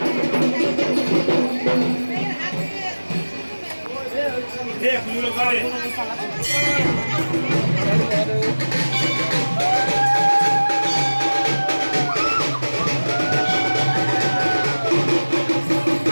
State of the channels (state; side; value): inverted; both; correlation -1.00